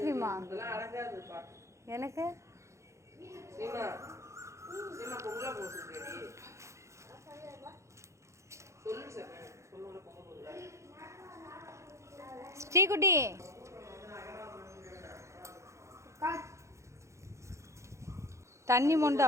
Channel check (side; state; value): left; late; 0.14 ms